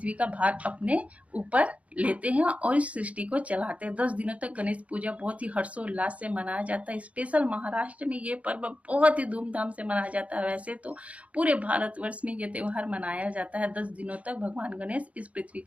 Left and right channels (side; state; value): left; late; 0.066 ms